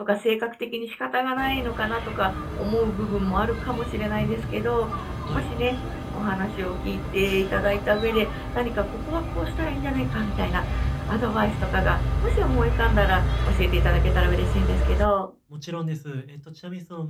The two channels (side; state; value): both; identical; correlation 1.00